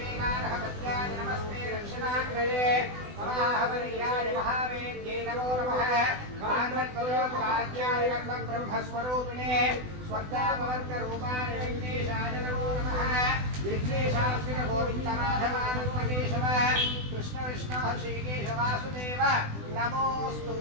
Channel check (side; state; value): left; late; 20 ms